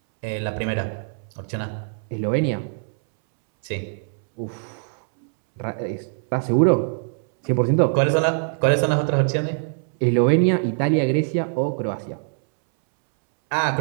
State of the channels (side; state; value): left; silent; 64 dB below the other